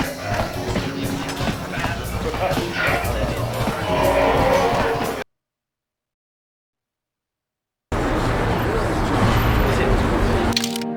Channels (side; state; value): both; identical; correlation 1.00